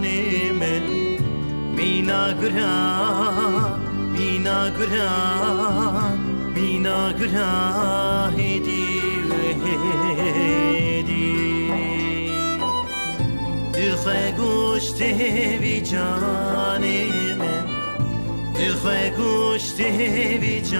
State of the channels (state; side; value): inverted; both; correlation -1.00